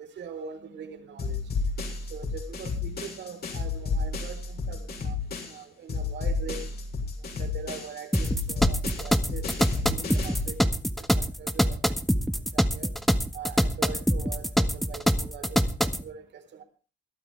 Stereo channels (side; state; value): both; normal; correlation 0.82